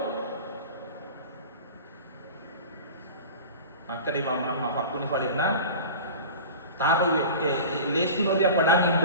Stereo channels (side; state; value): both; inverted; correlation -0.35